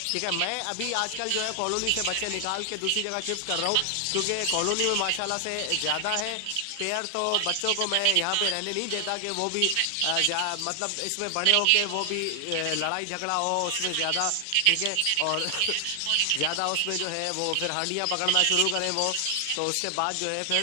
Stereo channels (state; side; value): different; both; correlation 0.00